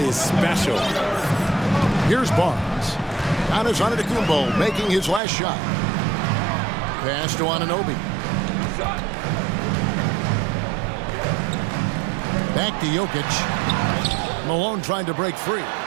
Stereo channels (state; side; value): drops out; left; at 5.2 s